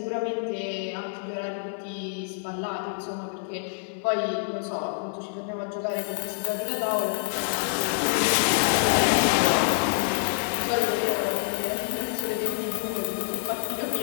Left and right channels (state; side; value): silent; right; digital silence